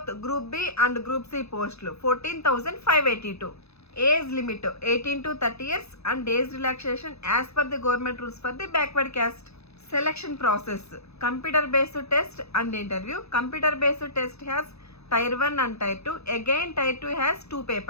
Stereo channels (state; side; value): late; right; 0.79 ms